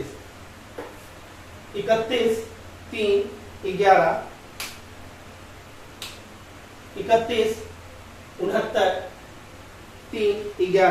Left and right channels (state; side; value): identical; both; correlation 1.00